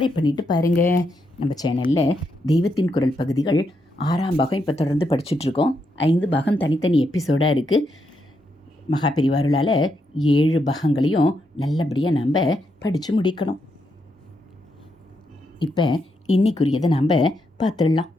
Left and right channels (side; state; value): both; normal; correlation 0.80